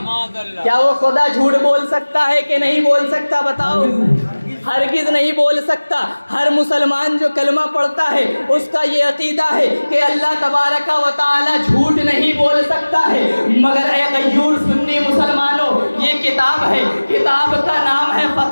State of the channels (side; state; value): both; inverted; correlation -1.00